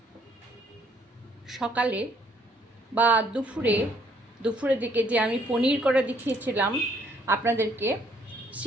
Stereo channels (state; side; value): normal; both; correlation 0.66